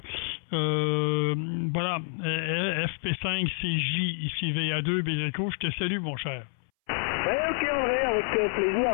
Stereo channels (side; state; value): right; silent; 59 dB below the other